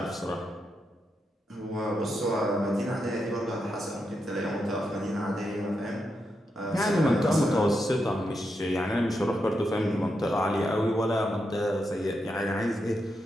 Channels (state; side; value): normal; both; correlation 0.84